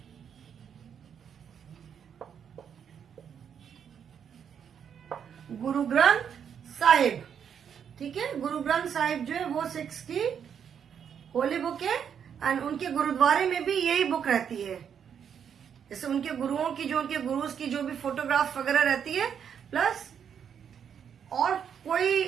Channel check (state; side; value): quieter; left; 7.9 dB